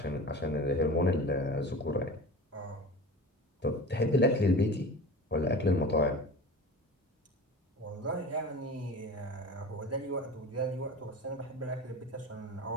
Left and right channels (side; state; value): both; normal; correlation 0.35